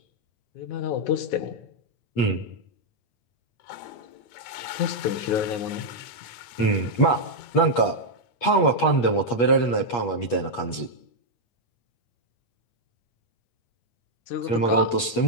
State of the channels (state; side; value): late; right; 8.4 ms